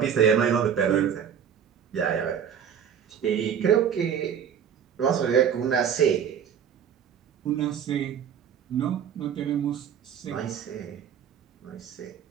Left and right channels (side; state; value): left; quieter; 8.2 dB